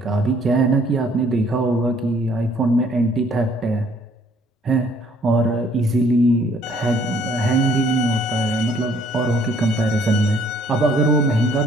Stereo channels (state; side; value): normal; both; correlation 0.61